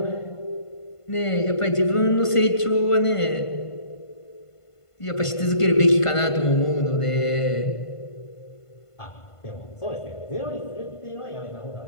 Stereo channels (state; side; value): late; right; 1.5 ms